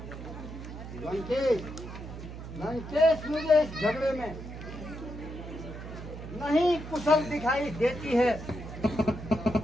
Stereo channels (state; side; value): noise; right; hum, 10 dB below the sound